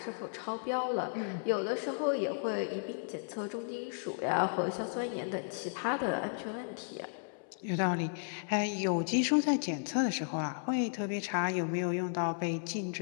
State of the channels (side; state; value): right; silent; 55 dB below the other